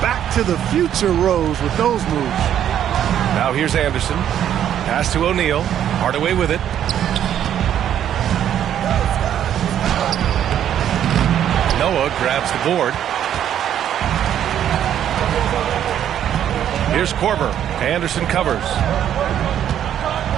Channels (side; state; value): left; quieter; 10.2 dB